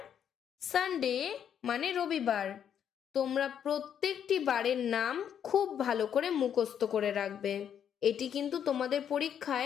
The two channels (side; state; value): right; quieter; 8.8 dB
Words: সানডে মানে রবিবার। তোমরা প্রত্যেকটি বারের নাম খুব ভালো করে মুখস্থ করে রাখবে, এটি কিন্তু তোমাদের